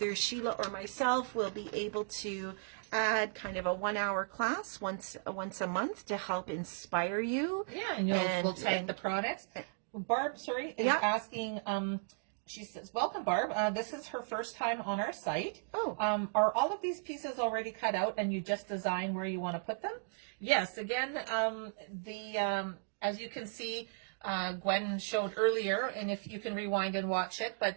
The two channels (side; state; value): left; silent; digital silence